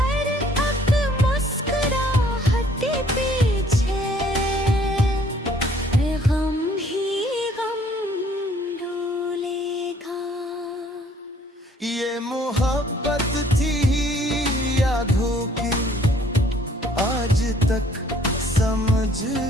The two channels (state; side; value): normal; both; correlation 0.60